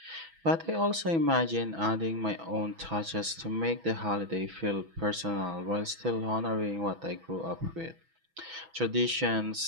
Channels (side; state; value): left; late; 6.1 ms